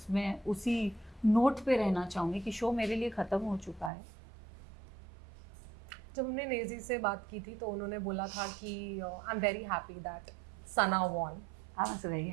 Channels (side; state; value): left; drops out; at 3.9 s